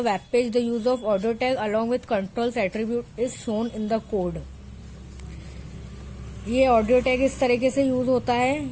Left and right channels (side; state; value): both; identical; correlation 1.00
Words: web page. The use of audio tag along with controls attribute is shown in the code. ये audio tag इस तरीके से use होता है।